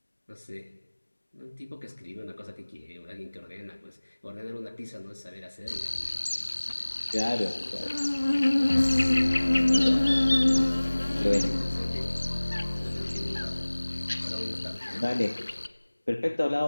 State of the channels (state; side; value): inverted; both; correlation -1.00